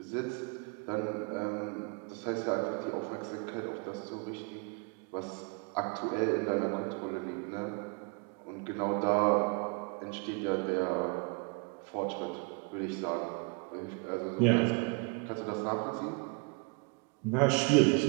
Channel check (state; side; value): quieter; left; 33.5 dB